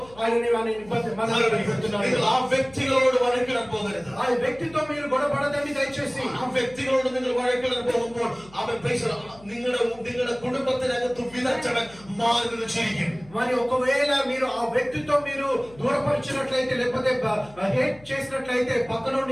ఆయనని ఇబ్బంది పెడుతున్నారు. നിങ്ങൾ ആ വ്യക്തികളോട് വഴക്കിടാൻ പോകരുത്. ఆ వ్యక్తితో మీరు గొడవపడదండి దయచేసి. ആ വ്യക്തികളോട് നിങ്ങൾ വഴക്കിടാൻ പോകുമ്പോൾ അവൻ നിങ്ങളുടെ കുടുംബത്തിനകത്ത് വിതച്ചവൻ മാറി നിന്ന് ചിരിക്കും. మరి ఒకవేళ మీరు ఆ వ్యక్తితో మీరు దూరపరిచినట్లయితే లేకపోతే హేట్ చేసినట్లయితే పక్కన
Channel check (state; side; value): noise; left; hum, 23 dB below the sound